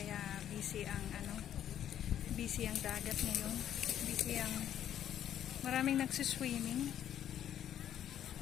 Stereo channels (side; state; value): right; quieter; 10.5 dB